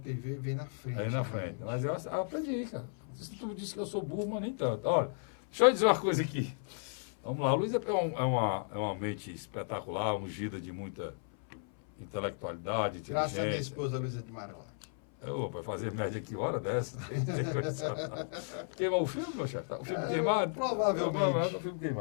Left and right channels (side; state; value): right; silent; 55 dB below the other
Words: vem na frente. Aí na frente. Mas eu aprendi, cara. Tu disse que eu sou burro, mas nem tanto. Olha, deixa eu dizer uma coisa aqui. Vamos lá, o Luiz é uma mente espetacular, ungida de muita intelectualidade, inteligência. Graças à minha esposa Luísa de Marilac. Vai fazer média que hora dessa? Queimou o filme, meu chefe? O filme queimado? Provavelmente. O filme